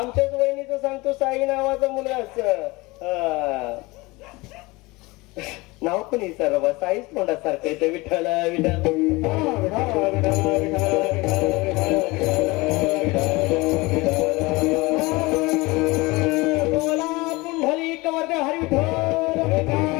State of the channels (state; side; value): quieter; right; 23.0 dB